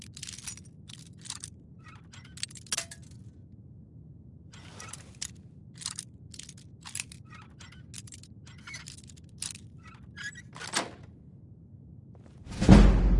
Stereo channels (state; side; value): identical; both; correlation 1.00